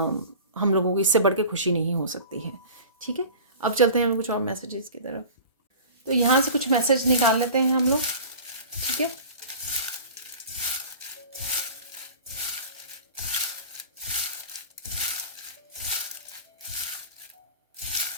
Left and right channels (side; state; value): both; inverted; correlation -0.39